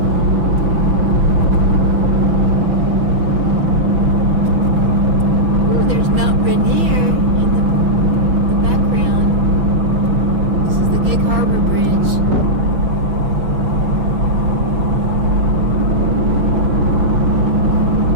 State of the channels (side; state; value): left; late; 6.0 ms